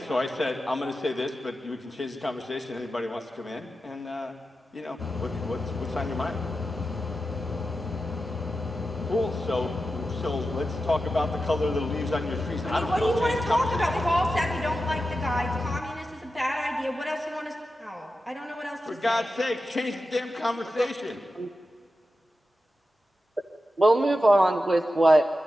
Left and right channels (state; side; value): normal; both; correlation 0.91